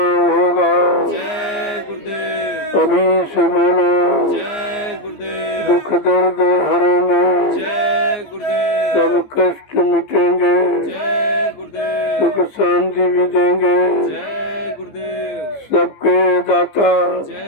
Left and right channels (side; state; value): right; late; 14 ms